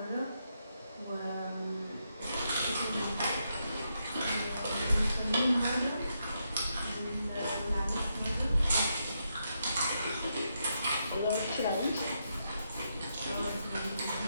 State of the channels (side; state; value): both; inverted; correlation -0.81